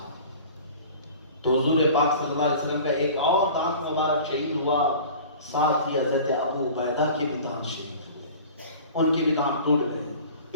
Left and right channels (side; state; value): both; inverted; correlation -0.42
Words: تو حضور پاک صلی اللہ علیہ وسلم کا ایک اور دانت مبارک شہید ہوا، ساتھ ہی حضرت ابو عبیدہ کے بھی دانت شہید ہوئے، ان کے بھی دانت ٹوٹ گئے،